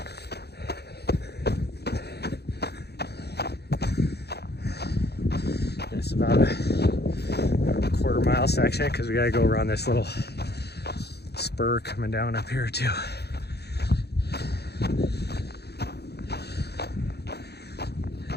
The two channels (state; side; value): late; right; 0.48 ms